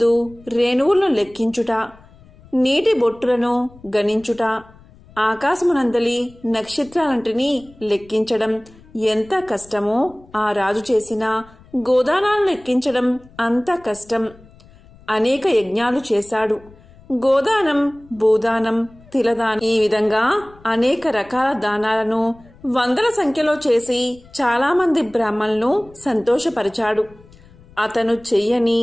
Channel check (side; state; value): left; noise; rumble, 25 dB below the sound